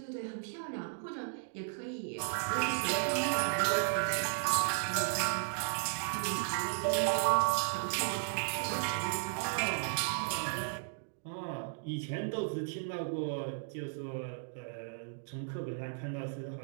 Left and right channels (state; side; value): silent; left; digital silence